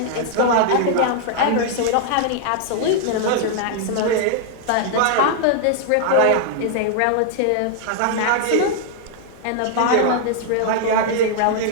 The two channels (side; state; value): both; different; correlation -0.01